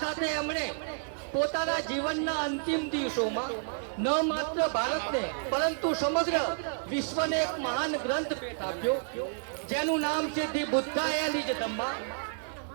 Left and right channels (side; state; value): left; silent; digital silence